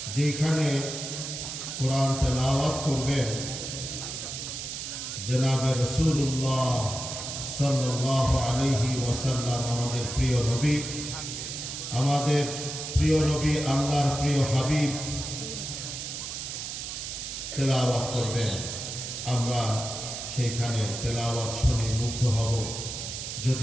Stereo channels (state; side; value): noise; right; hiss, 6 dB below the sound